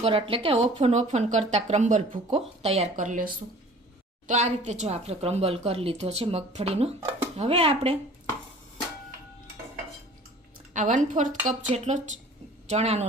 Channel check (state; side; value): normal; both; correlation 0.47